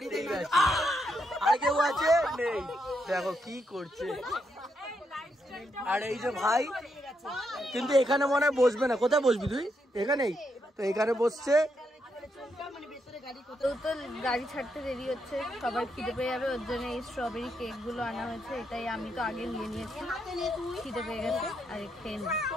আর কেউ আছে নেই, দেখো কি করছে। আর এই যে ভাই কিন্তু এখানে মনে হয় বসবে না, কোথায় বসবি তুই? এখানেই তো, এখানে বসছে। তো গাড়ি ছাড়তে দেরি হচ্ছে, সবাই খিদে পেয়ে যাবে, ওর জন্য এই স্ট্রবেরি কেক গুলো আনা হয়েছে। এটাই আমি তো আগে নিয়ে নিয়েছি, খিদে পেয়ে গেছে আর খেয়ে নি।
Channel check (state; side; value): normal; both; correlation 0.80